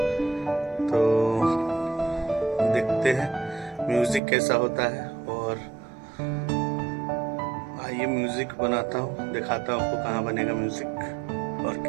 तो देखते हैं म्यूज़िक कैसा होता है और आइए म्यूज़िक बनाता हूँ, दिखाता हूँ आपको कहाँ बनेगा म्यूज़िक और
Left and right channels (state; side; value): drops out; left; at 4.2 s